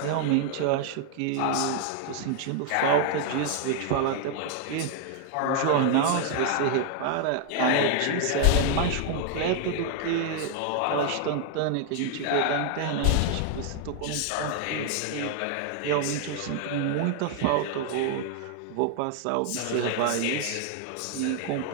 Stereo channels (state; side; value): different; both; correlation 0.00